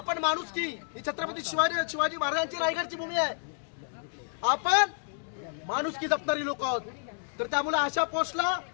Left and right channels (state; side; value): silent; right; digital silence